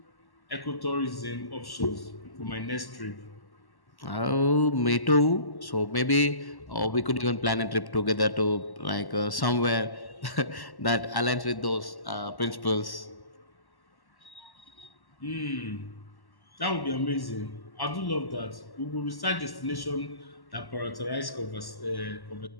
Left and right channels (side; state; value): right; late; 1.1 ms